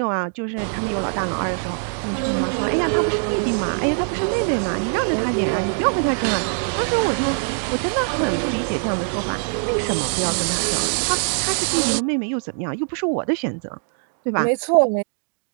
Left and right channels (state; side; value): silent; left; 58 dB below the other